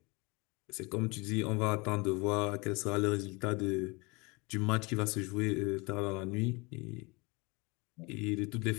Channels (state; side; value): quieter; right; 27.2 dB